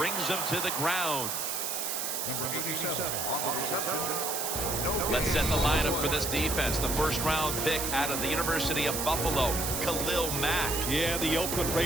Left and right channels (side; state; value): right; noise; hiss, 2 dB below the sound